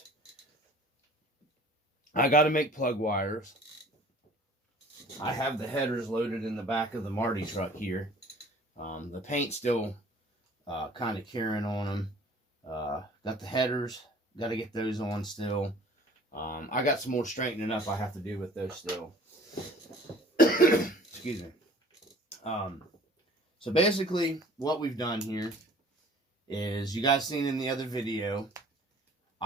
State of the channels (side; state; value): both; normal; correlation 0.50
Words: I got to make plug wires. I have the headers loaded in the back of the Marty truck here. The paint's still kind of curing on them. Got the headers. Got to get those on still. I got some more straightening up I have to do with those still. Excuse me. So basically, what we've done here is, you guys seen in the other video,